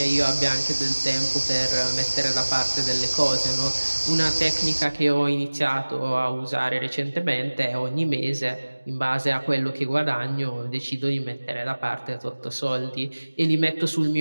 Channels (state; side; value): inverted; both; correlation -1.00